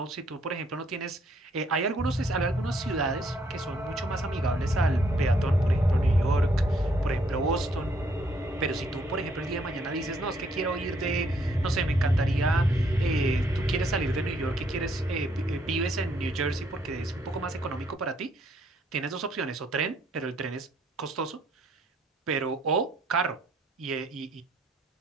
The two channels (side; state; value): both; normal; correlation 0.69